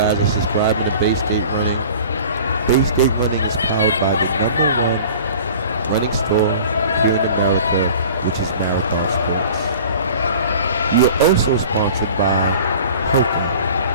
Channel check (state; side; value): inverted; both; correlation -0.44